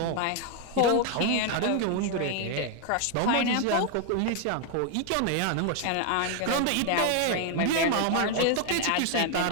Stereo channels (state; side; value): different; both; correlation 0.00